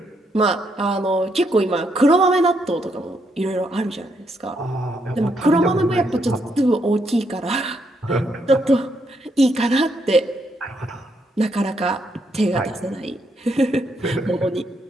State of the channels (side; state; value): both; normal; correlation 0.76